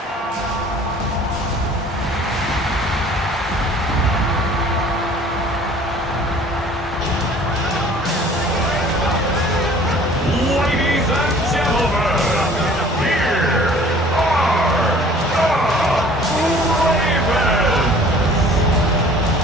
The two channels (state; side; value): normal; both; correlation 0.51